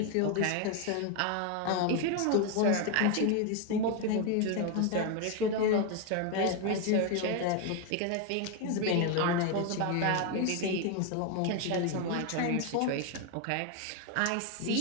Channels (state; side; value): different; both; correlation 0.01